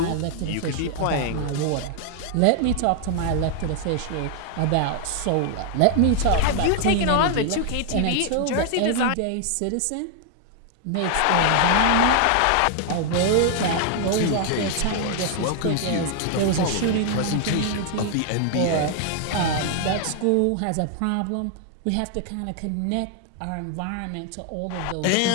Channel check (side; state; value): both; different; correlation 0.00